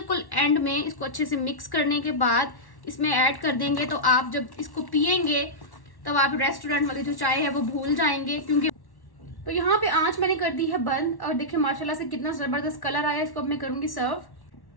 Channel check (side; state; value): right; late; 1.1 ms